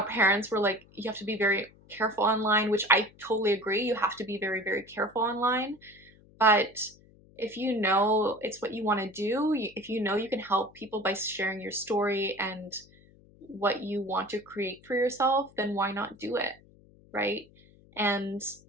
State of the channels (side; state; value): left; noise; hum, 27 dB below the sound